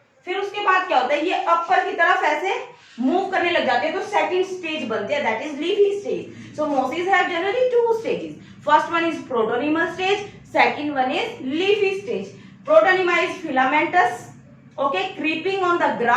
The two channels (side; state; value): both; identical; correlation 1.00